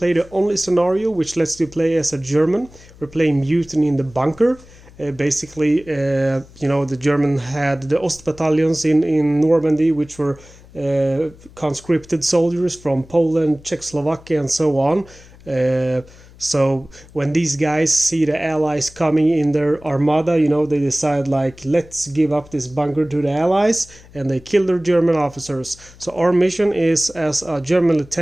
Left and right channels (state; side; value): noise; left; hum, 23 dB below the sound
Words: the only scenario which lets you play as a German. We're playing Mutiny in the Bunker. The German had the Ost battalions in Normandy, which were conscripted soldiers from Poland, Czechoslovakia and so on. So when these guys see the Allies coming in their armada, they decide let's give up this bunker to the Allies, and they kill their German officers. So our mission is, as a German